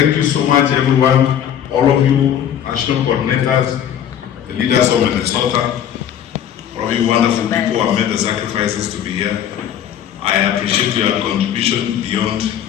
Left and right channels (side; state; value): right; quieter; 9.8 dB